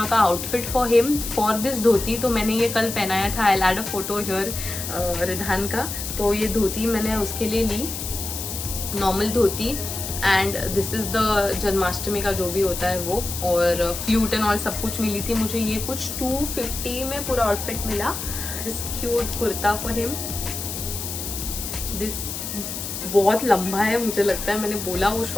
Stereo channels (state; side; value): noise; left; hiss, 6 dB below the sound